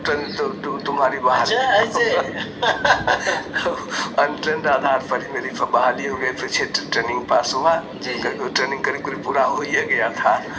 तुम्हारी बहाली? अनट्रेंड आधार पर ही मेरी बहाली हो गई। फिर ट्रेनिंग पास हुआ। ट्रेनिंग करीब पूरा हो ही गया था।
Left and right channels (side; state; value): both; identical; correlation 1.00